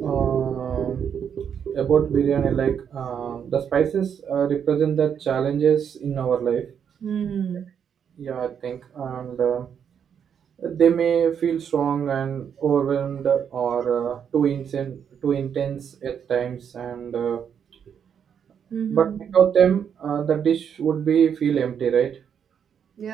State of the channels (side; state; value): left; quieter; 7.9 dB